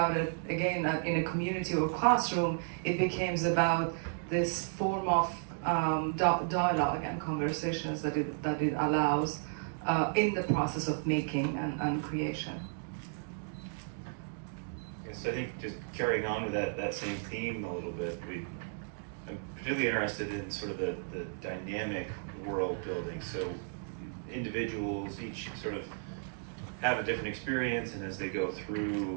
it again in a community or classroom, it becomes about this form of dialogue and conversations that it allows in the process of making and creation. So I think just carrying on with that same theme a little bit, I'm particularly interested in sort of the dynamic world building. So individuals each sort of have a different experience, and as they go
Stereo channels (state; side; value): silent; left; digital silence